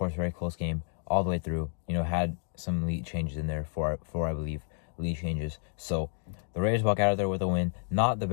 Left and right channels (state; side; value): silent; right; digital silence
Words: very close game all the way through. Had some lead changes in there, four I believe, lead changes. So, the Raiders walk out of there with a win. Not the